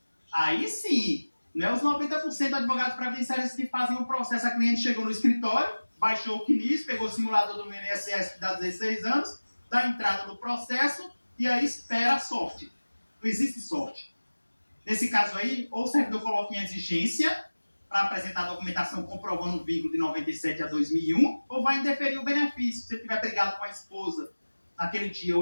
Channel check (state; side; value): inverted; both; correlation -1.00